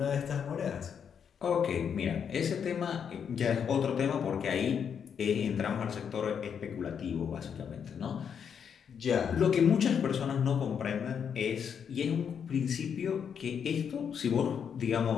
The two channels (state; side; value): quieter; right; 7.5 dB